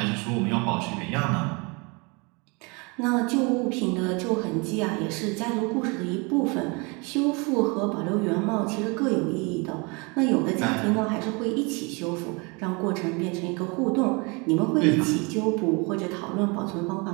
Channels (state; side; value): quieter; left; 29.6 dB